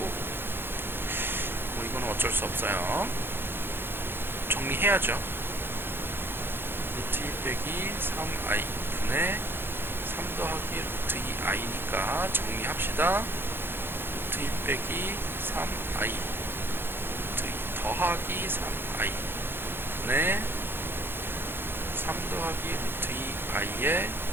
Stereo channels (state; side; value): late; left; 0.10 ms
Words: 뭐 이거는 어쩔 수 없어요. 정리해야죠. 루트 2 빼기 3i 분의 3 더하기 루트 2i니까 정리합시다. 루트 2 빼기 3i 루트 2 더하기 3i 분의 3 더하기 루트 2i의